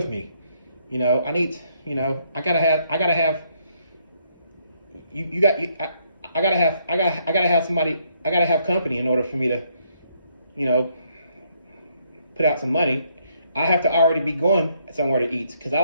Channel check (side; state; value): both; inverted; correlation -0.71